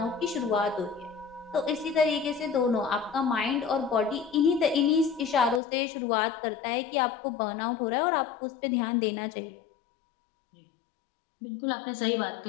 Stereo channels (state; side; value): drops out; right; at 5.6 s